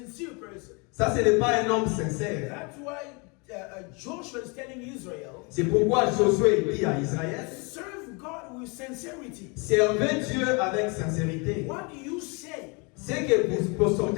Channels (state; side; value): quieter; right; 31.0 dB